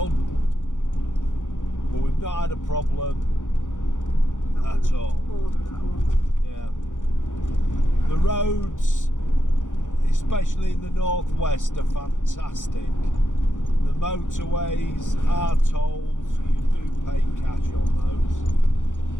But we've not had a problem at all. Yeah. The roads, especially in the northwest, are fantastic. The motorways, our tolls, you do pay cash on those.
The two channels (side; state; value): right; late; 0.86 ms